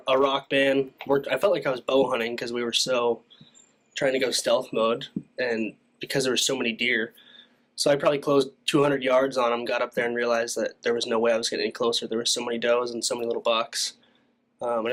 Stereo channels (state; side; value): identical; both; correlation 1.00